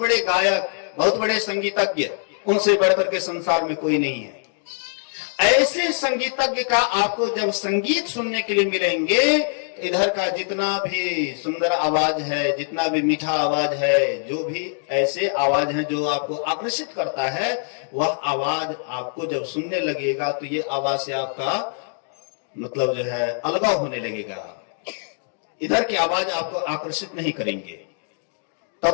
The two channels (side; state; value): right; silent; digital silence